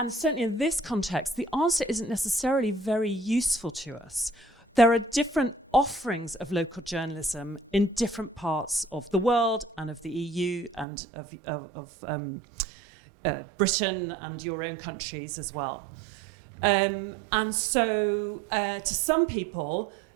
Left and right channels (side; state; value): left; drops out; at 10.9 s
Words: certainly in this context, the answer isn't necessarily very useful to us. There are different offerings of local journalism in different parts of the world and of the EU and of Britain and your own countries as well. And so to some people,